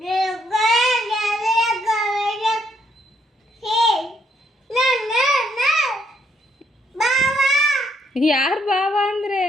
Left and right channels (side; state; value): both; normal; correlation 0.72